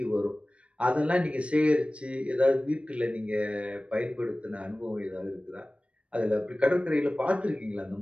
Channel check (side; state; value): left; late; 0.061 ms